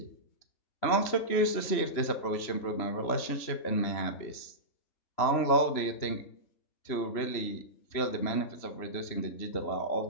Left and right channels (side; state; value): right; late; 3.0 ms